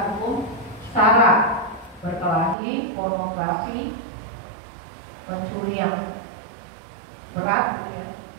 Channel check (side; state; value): left; drops out; at 2.6 s